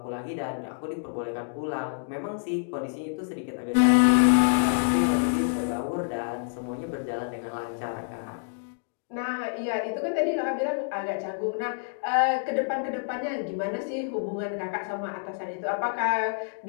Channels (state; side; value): silent; right; digital silence